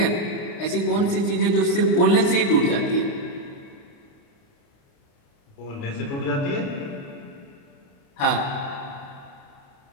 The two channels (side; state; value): right; late; 29 ms